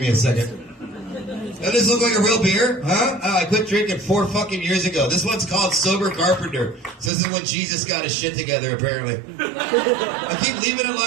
me a second. Doesn't this look like a real beer? Huh? I quit drinking 4 fucking years ago. This one's called Sober Carpenter. So this is when Jesus got his shit together, apparently. I keep leaving it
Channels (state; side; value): drops out; left; at 7.1 s